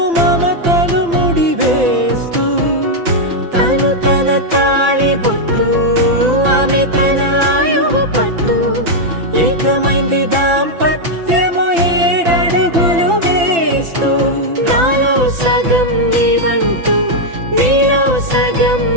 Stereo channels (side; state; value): left; late; 5.9 ms